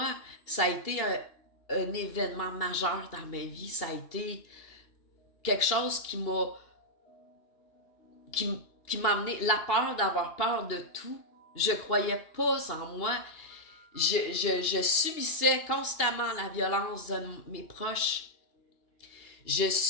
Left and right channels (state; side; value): late; right; 2.7 ms